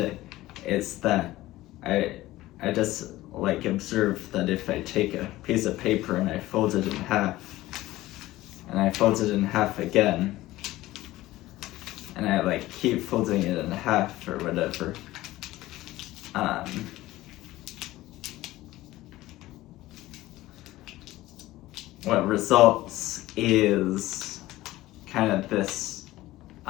Is that I just like observe that if I take a piece of paper and I fold it in half, and I fold it in half again, and I like keep folding it in half or whatever, what results is kind of this,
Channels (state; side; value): quieter; right; 16.9 dB